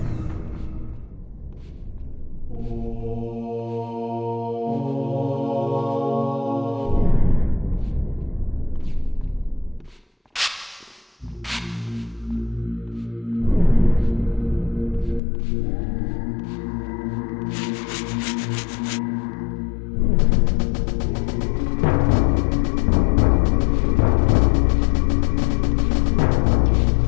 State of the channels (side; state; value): right; drops out; at 15.2 s